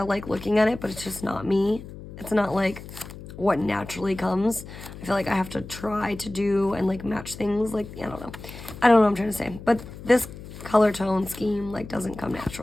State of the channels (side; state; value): left; noise; hum, 14 dB below the sound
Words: like looking at it, but it's just not me. It's not like what naturally comes. I feel like I have to try to do and like match things, like I don't know what I'm trying to say, but this color tone scheme like doesn't come